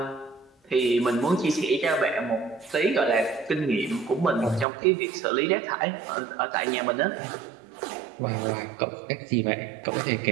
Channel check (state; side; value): drops out; left; at 4.7 s